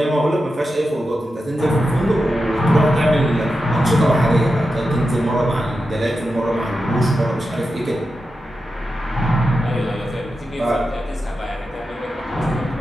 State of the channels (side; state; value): both; normal; correlation 0.90